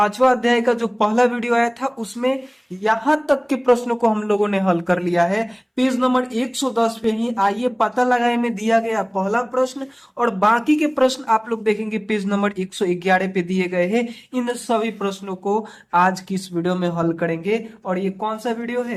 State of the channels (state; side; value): identical; both; correlation 1.00